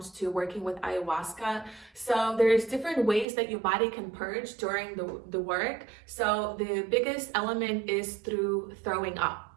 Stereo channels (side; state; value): left; drops out; at 3.2 s